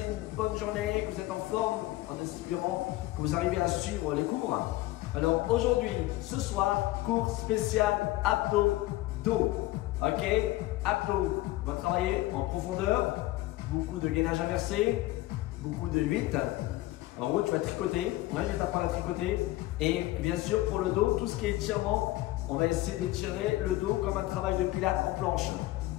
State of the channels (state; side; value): quieter; right; 17.7 dB